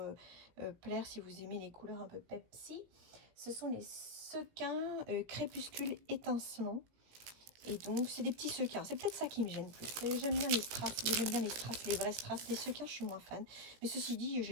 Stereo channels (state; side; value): late; left; 17 ms